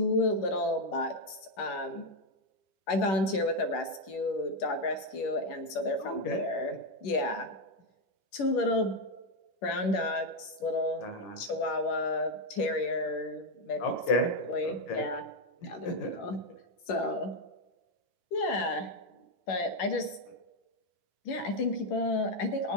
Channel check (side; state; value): right; late; 11 ms